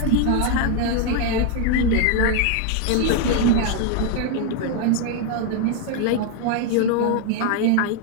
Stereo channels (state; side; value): different; both; correlation 0.01